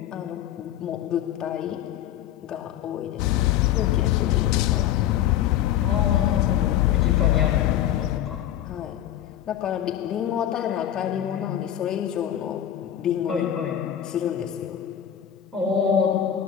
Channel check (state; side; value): quieter; right; 10.9 dB